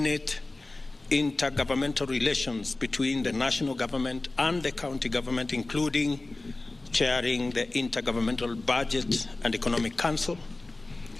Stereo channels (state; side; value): quieter; right; 3.1 dB